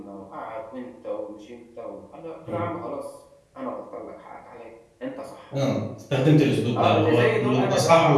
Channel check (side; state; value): both; identical; correlation 1.00